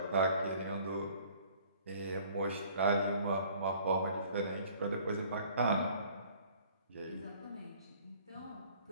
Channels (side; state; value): both; inverted; correlation -0.54